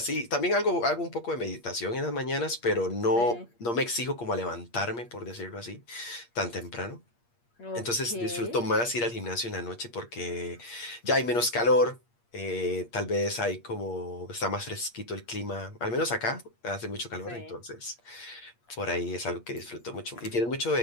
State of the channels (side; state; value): right; late; 8.5 ms